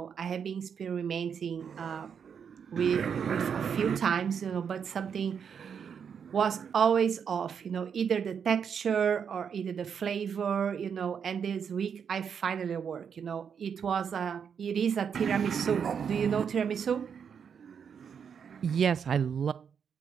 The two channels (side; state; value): left; quieter; 7.2 dB